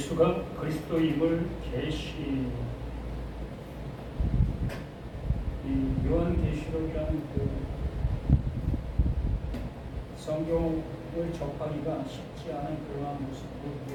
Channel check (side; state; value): both; identical; correlation 1.00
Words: 그리스도임을 계시 이 요한계시록이라는 그 성경을 접하기가 쉽지 않은 그러한 모습으로